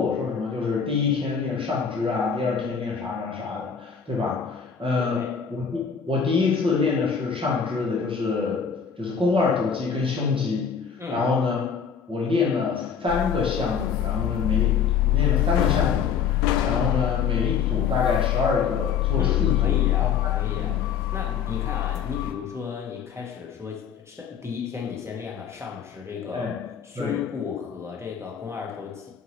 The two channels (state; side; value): quieter; right; 6.7 dB